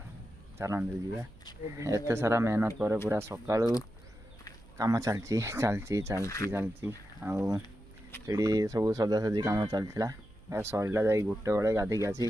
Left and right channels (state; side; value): noise; right; hum, 24 dB below the sound